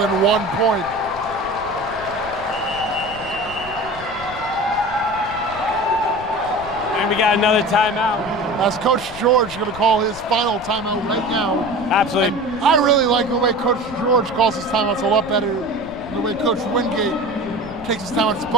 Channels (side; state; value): left; noise; rumble, 16 dB below the sound